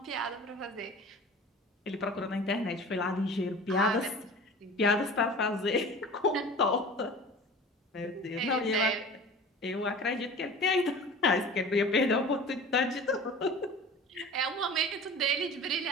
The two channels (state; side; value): normal; both; correlation 0.39